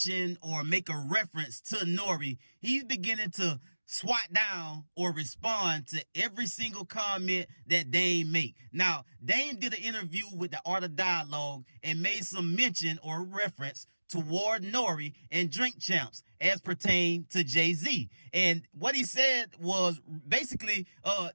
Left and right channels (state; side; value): inverted; both; correlation -1.00